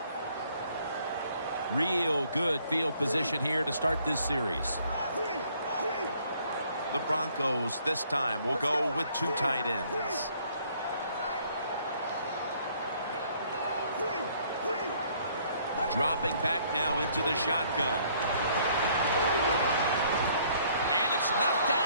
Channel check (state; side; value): inverted; both; correlation -0.63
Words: Real good field position here to start this series. The Broncos this time will go with 2 tight ends. Dropping back now into the shotgun. And it's knocked